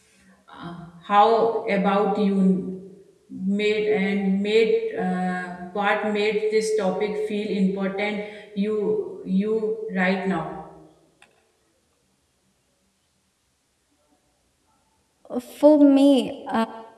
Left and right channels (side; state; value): both; identical; correlation 1.00